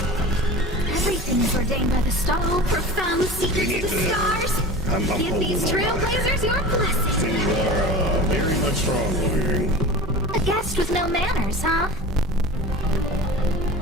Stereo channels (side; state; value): both; normal; correlation 0.34